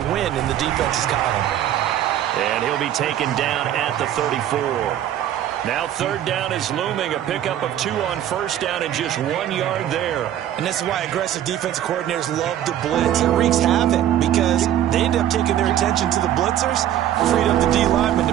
win in the defense's column. And he'll be taken down at the 34. Now 3rd down is looming. A pickup of 2 on first down and just 1 yard there. And this is why aggressive defensive coordinators love to blitz. It wreaks havoc because they end up taking their attention to the blitzers, freed up the D lineman to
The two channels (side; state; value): left; quieter; 11.5 dB